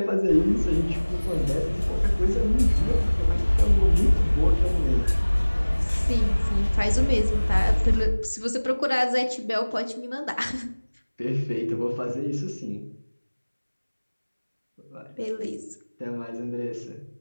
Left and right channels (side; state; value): both; inverted; correlation -1.00